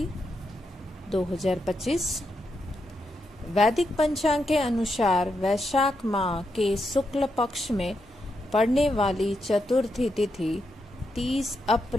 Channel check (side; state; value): both; normal; correlation 0.83